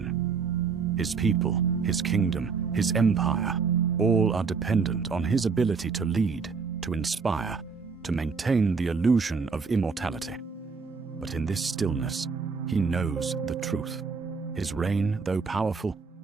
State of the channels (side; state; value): left; quieter; 5.2 dB